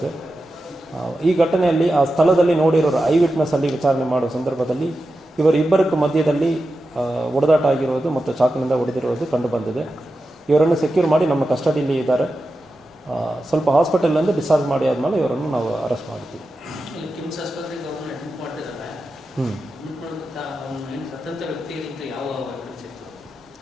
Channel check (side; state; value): both; normal; correlation 0.91